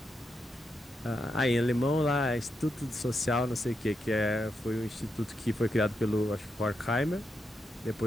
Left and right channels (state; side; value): normal; both; correlation 0.84